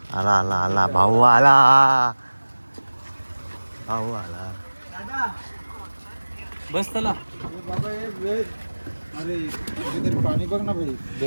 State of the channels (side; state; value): both; inverted; correlation -1.00